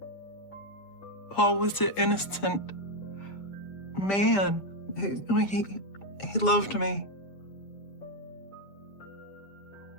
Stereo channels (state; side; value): late; right; 6.7 ms